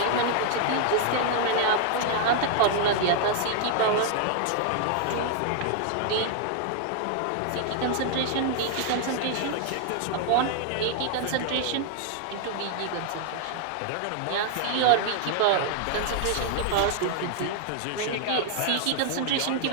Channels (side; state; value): both; different; correlation 0.00